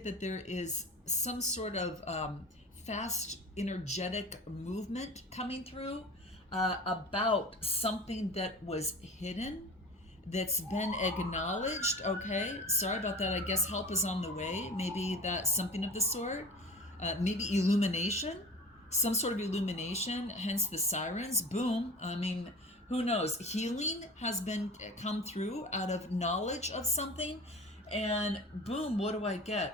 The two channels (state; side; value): normal; both; correlation 0.38